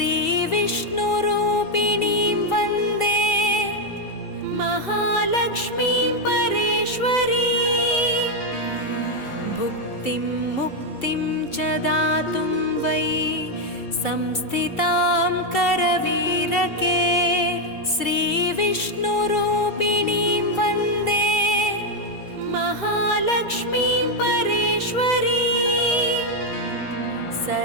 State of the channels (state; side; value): late; right; 2.3 ms